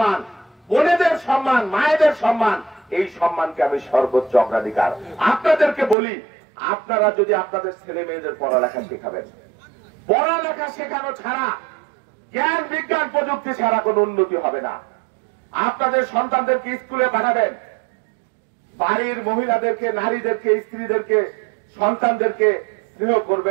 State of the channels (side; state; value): left; drops out; at 6.0 s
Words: বোনেদের সম্মান, মায়েদের সম্মান, এই সম্মানকে আমি সর্বোচ্চ অগ্রাধিকার। আপনাদেরকে বলি, আপনারা যদি আপনাদের ছেলে মেয়েদের পড়ালেখা শেখাবেন, পড়ালেখা শেখানো ছাড়া, জ্ঞান বিজ্ঞান প্রযুক্তি ছাড়া কোনো উন্নতি হবে না। আপনাদের সন্তানদেরকে স্কুলে পাঠাবেন, বাড়ির মহিলাদেরকে, নারীদেরকে, স্ত্রীদেরকে, সন্তানদেরকে স্নেহ